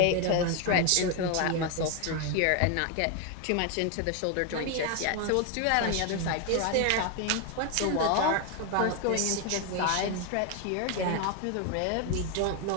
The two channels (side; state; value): both; different; correlation 0.01